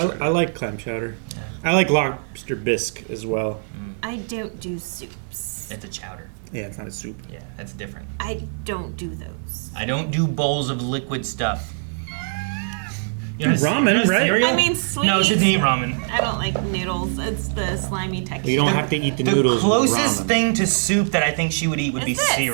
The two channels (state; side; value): silent; left; digital silence